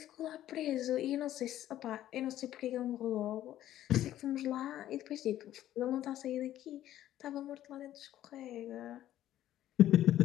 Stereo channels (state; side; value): quieter; right; 12.8 dB